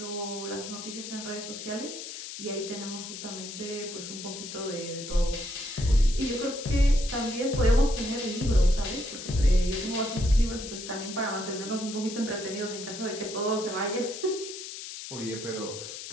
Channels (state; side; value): noise; left; hiss, 9 dB below the sound